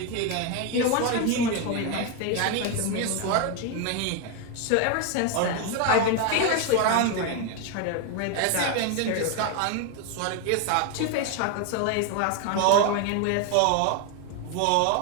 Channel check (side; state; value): both; different; correlation 0.02